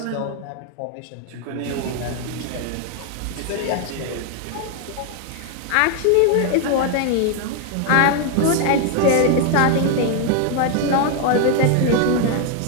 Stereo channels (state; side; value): different; both; correlation 0.01